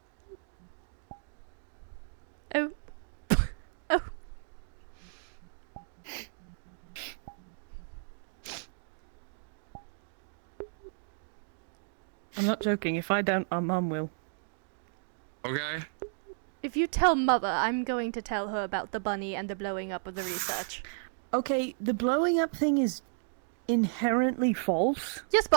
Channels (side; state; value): left; silent; digital silence